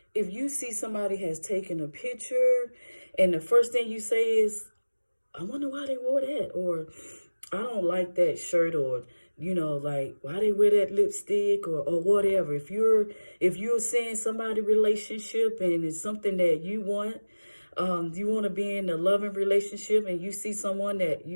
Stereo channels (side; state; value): both; inverted; correlation -1.00